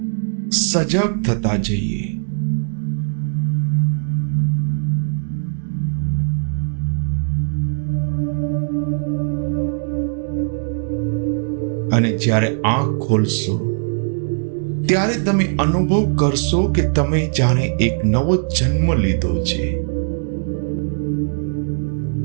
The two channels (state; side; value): silent; left; digital silence